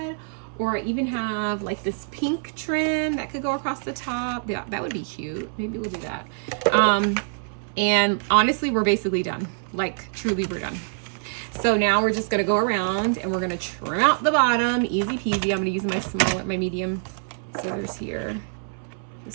or I even have like this pink trim that could go across the top. Yeah, that would be cute. Maybe we'll do that. And honestly, we're basically done. Like truly, we're done. So now we're just gonna go around and we're gonna trim out the bottom, easy peasy. I'm gonna use my medium scissors here,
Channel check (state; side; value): silent; left; 62 dB below the other